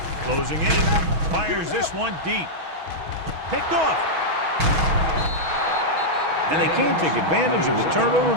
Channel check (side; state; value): left; late; 6.2 ms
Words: Closing in, fires this one deep. Picked off. And they can't take advantage of the turnover